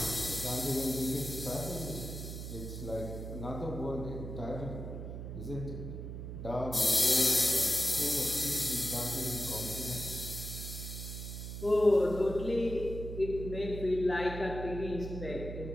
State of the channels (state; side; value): noise; right; hum, 7 dB below the sound